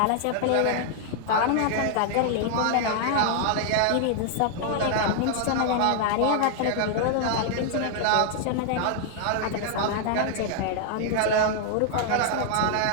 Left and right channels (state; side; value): different; both; correlation 0.00